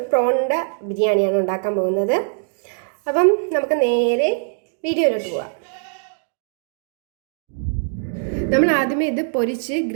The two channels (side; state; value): left; silent; 64 dB below the other